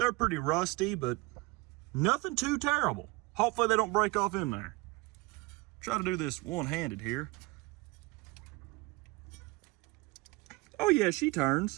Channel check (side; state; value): left; quieter; 23.3 dB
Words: pretty rusty, but nothing too terrible. Hopefully they don't break off in there. Try to do this one-handed here. Oh yeah, she